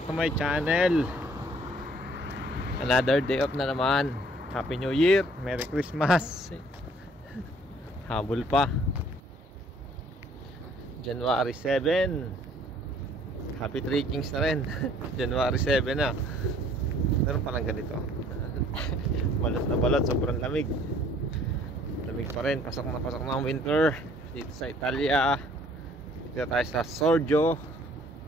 to my channel. Another day off na naman. Happy New Year, Merry Christmas. Habol pa. January 7. Happy Three Kings na rin. January 7 na. Meron palang ganito. Balot na balot, sobrang lamig. Lamig pa rin, pasok na ang winter. Dito sa Italia. Dito tayo sa Sorgio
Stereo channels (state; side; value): normal; both; correlation 0.58